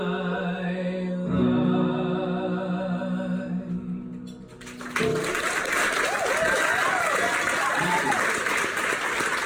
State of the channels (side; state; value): both; identical; correlation 1.00